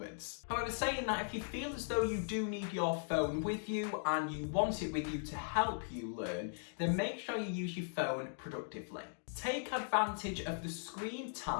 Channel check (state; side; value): silent; right; digital silence